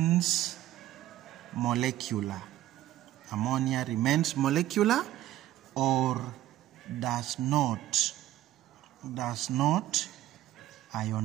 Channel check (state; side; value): quieter; left; 13.8 dB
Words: molecular. Ammonia remains molecular or does not